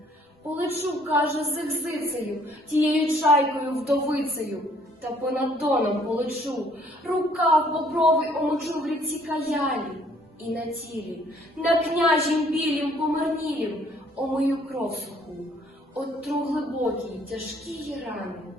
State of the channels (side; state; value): both; normal; correlation 0.61